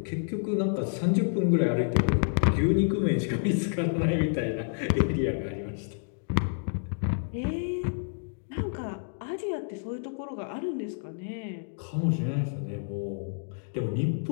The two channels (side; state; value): right; silent; digital silence